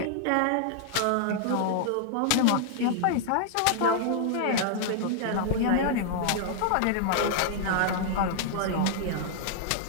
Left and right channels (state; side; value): different; both; correlation -0.01